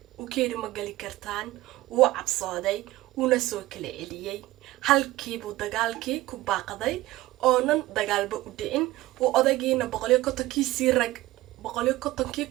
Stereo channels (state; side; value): quieter; left; 17.3 dB